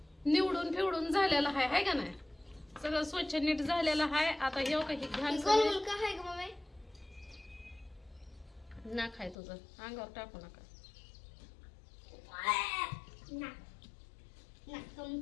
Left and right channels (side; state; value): right; drops out; at 9.3 s